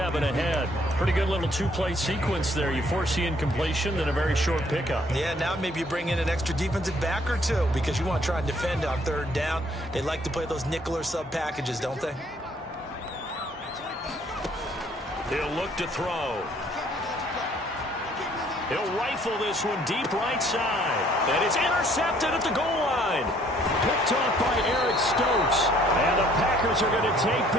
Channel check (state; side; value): normal; both; correlation 0.62